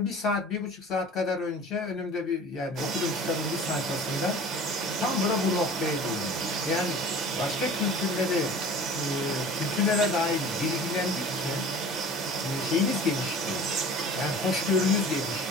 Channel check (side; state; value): both; normal; correlation 0.43